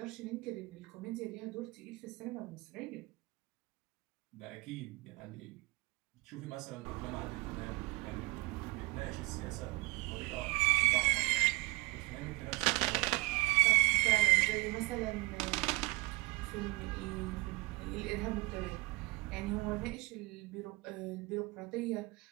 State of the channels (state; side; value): quieter; left; 24.4 dB